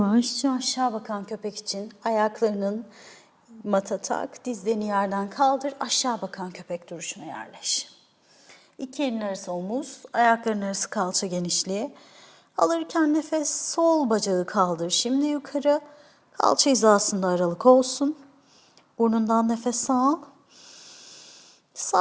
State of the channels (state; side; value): identical; both; correlation 1.00